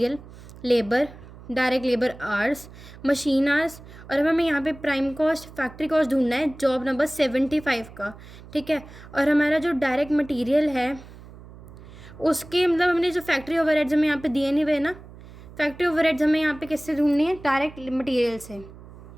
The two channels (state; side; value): noise; right; hum, 18 dB below the sound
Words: labour, direct labour hours, machine hours, और हमें यहाँ पे प्राइम कॉस्ट, फैक्ट्री कॉस्ट ढूंढना है जॉब नंबर 75 का। ठीक है, और हमारा जो डायरेक्ट मटेरियल है उसके मतलब हमने जो फैक्ट्री ओवरहेड्स हमें यहाँ पे दिए नहीं हुए ना, फैक्ट्री ओवरहेड्स हमें यहाँ पे किससे ढूंढनी है, डायरेक्ट मटेरियल से,